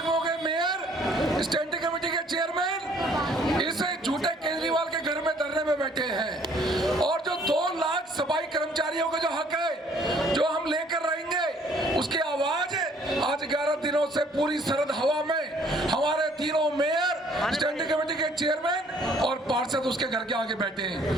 के मेयर, स्टैंडिंग कमेटी के चेयरमैन इस झूठे केजरीवाल के घर में धरने में बैठे हैं, और जो 2 लाख सफाई कर्मचारियों का जो हक है जो हम लेकर रहेंगे उसकी आवाज आज 11 दिनों से पूरी सरहद हवा में हमारे तीनों मेयर, स्टैंडिंग कमेटी के चेयरमैन और पार्षद उसके घर के आगे बैठे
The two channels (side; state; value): both; normal; correlation 0.60